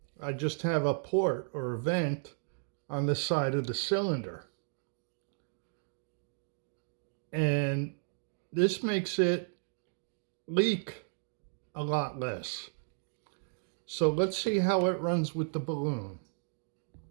I just have a port or a vent on the side of the cylinder. And this makes it leak a lot less. So let's see how it runs with the balloon.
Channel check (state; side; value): silent; left; digital silence